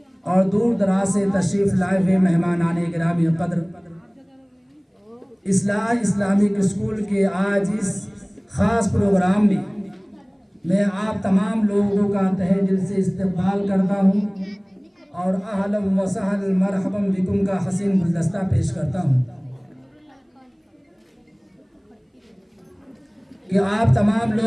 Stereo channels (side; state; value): both; identical; correlation 1.00